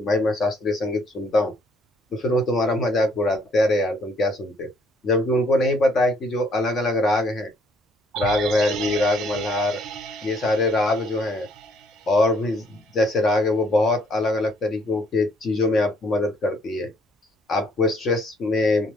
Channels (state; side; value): normal; both; correlation 0.65